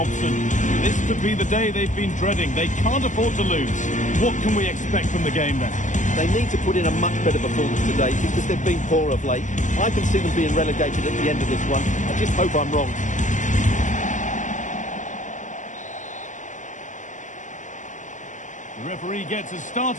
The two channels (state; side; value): late; right; 0.36 ms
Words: This could be the day they've been dreading. They can't afford to lose. What can we expect from the game then? They need to put in a much better performance today because they've been poor of late. I can see them being relegated at the end of this one. I just hope I'm wrong. The referee gets us